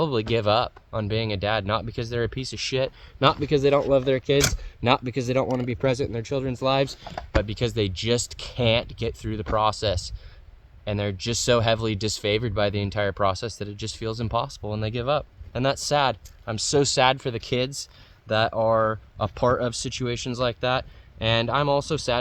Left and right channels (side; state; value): both; identical; correlation 1.00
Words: give up on being a dad, not because they're a piece of shit, not because they don't love their kids, not because they don't want to be present in their children's lives, but because they just can't get through the process. And they're just so heavily disfavored by the entire process that it just feels impossible and they give up. And that's sad. I'm so sad for the kids that are a part of situations like that. And I'm also